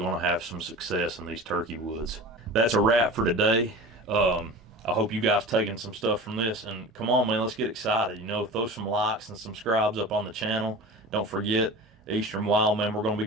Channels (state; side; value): normal; both; correlation 0.35